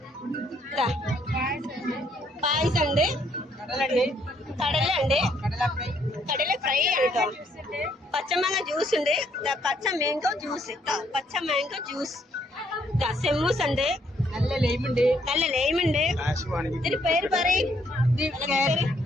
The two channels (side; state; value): both; normal; correlation 0.70